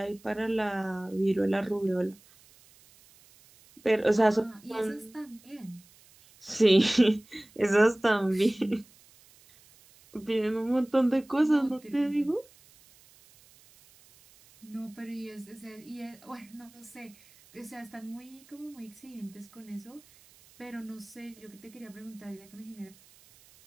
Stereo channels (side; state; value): right; noise; hiss, 27 dB below the sound